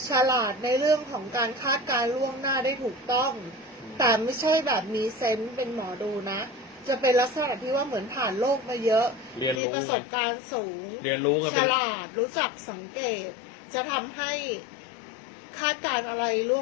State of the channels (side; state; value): right; drops out; at 9.6 s